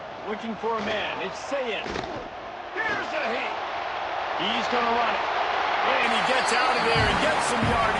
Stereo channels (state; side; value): identical; both; correlation 1.00